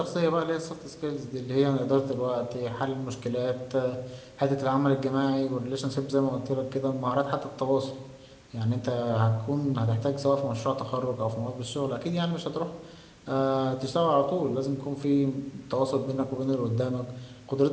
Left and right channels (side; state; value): both; identical; correlation 1.00